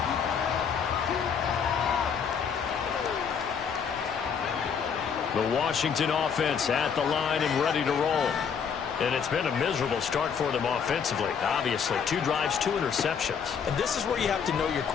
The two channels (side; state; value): right; quieter; 6.8 dB